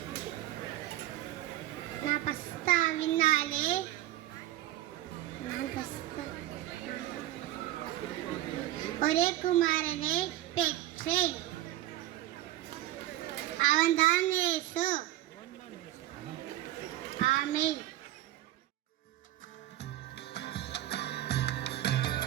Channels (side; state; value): left; quieter; 14.5 dB